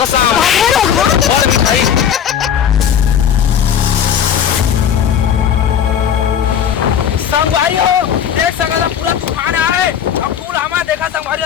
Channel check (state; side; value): quieter; right; 8.7 dB